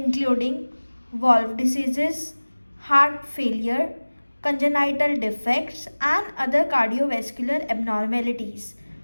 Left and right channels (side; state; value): both; inverted; correlation -1.00